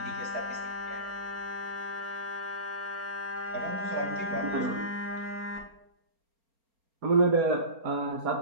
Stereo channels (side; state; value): left; late; 4.3 ms